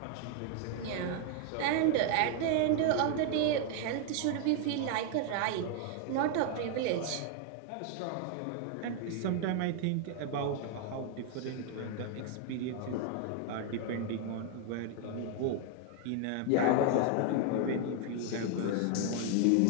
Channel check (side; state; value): both; different; correlation 0.00